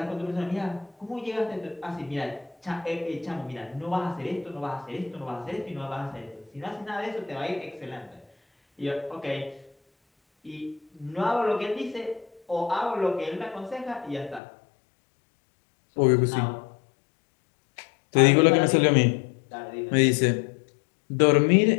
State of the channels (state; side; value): drops out; right; at 14.4 s